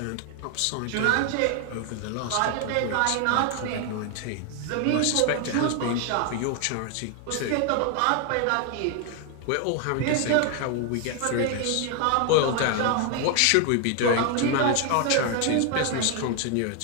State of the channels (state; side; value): different; both; correlation 0.00